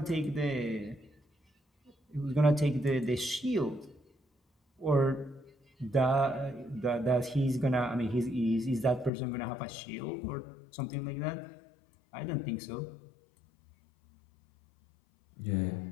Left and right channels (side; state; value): right; drops out; at 9.1 s